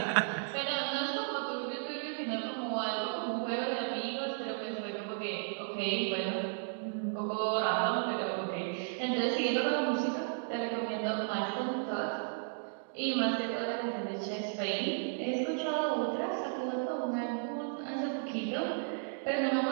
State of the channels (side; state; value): left; silent; digital silence